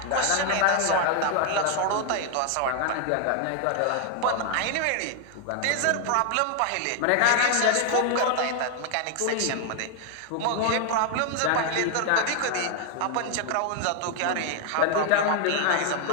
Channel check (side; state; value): both; different; correlation 0.00